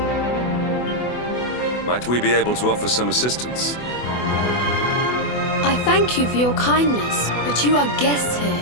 Might we be able to offer some assistance? I thank you for your kindness, but you are guests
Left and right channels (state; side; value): late; right; 24 ms